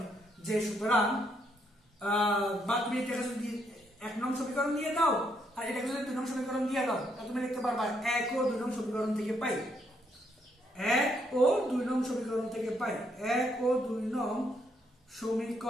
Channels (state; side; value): normal; both; correlation 0.74